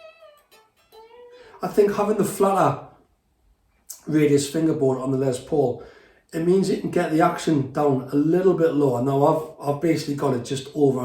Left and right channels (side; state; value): both; identical; correlation 1.00